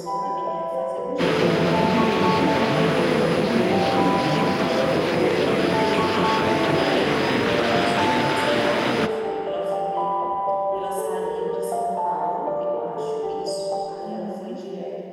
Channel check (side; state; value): both; identical; correlation 1.00